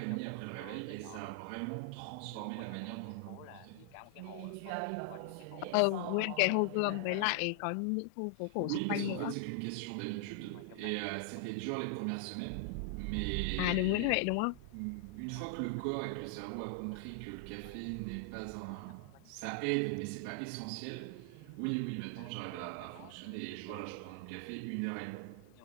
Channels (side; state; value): both; different; correlation 0.00